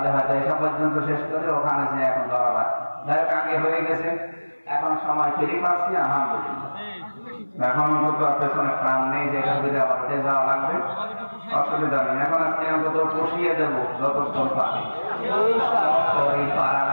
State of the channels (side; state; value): both; inverted; correlation -1.00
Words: হয়তো এসব পর্যন্ত শেষ করে ওখানে যে এখন ধরা লাগছে। যাই হোক, আগে হয়ে গেছে, এখন সময় ফিরে পাচ্ছি আলহামদুলিল্লাহ। এখন অন্তত পেছনে প্রাণ নেই যে এখান থেকে আবার উঠে যাওয়া লাগবে, অসুবিধা নেই। এখন আজকে অন্তত পুষিয়ে দেবো যতক্ষণ পারি, শরীর পারা